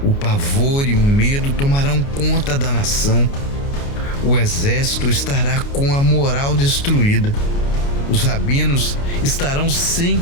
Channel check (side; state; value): right; late; 29 ms